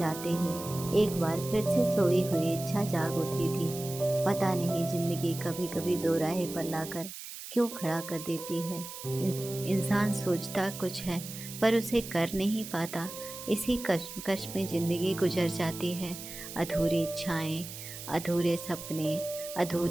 ही एक बार फिर से सोई हुई इच्छा जाग उठी थी। पता नहीं जिंदगी कभी कभी दो राहे पर लाकर क्यों खड़ा कर देती है। इंसान सोचता कुछ है पर उसे कर नहीं पाता। इसी कश्मकश में जिंदगी गुजर जाती है। अधूरी इच्छाएं, अधूरे सपने,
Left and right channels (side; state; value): right; noise; hiss, 11 dB below the sound